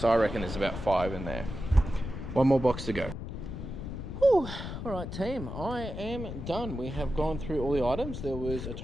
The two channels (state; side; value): noise; left; rumble, 7 dB below the sound